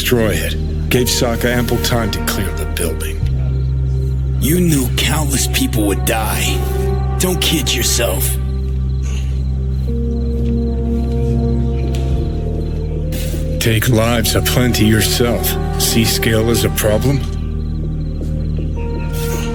it. Gave Sokka ample time to clear the building. You knew countless people would die. Don't kid yourself. Take lives aplenty yourself. See scale as a problem?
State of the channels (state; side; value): identical; both; correlation 1.00